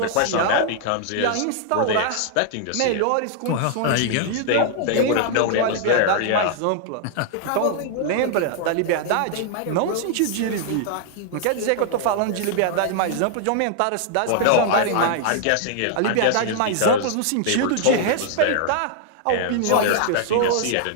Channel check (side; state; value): both; different; correlation 0.00